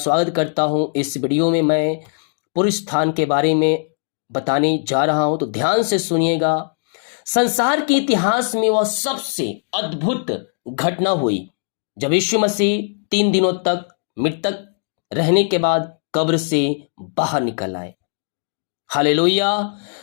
करता हूं। इस वीडियो में मैं पूर्ण स्थान के बारे में बताने जा रहा हूं, तो ध्यान से सुनिएगा। संसार के इतिहास में वह सबसे अद्भुत घटना हुई जब यीशु मसीह 3 दिनों तक मृतक रहने के बाद कब्र से बाहर निकल आए। हालेलुया।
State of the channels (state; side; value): silent; right; digital silence